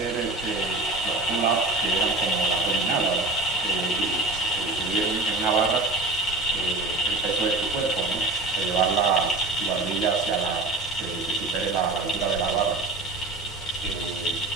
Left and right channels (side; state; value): left; quieter; 3.0 dB